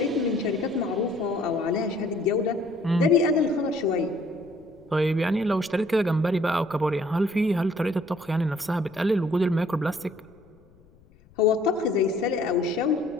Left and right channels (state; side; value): noise; left; rumble, 28 dB below the sound